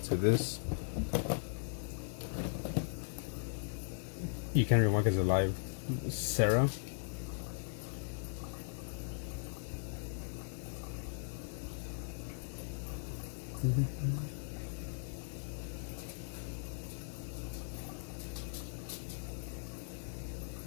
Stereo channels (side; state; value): right; silent; digital silence